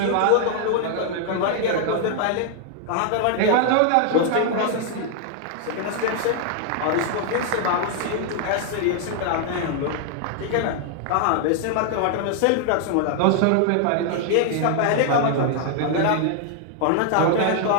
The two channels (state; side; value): different; both; correlation 0.00